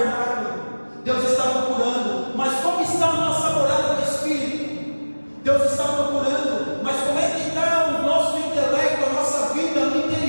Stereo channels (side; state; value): both; inverted; correlation -1.00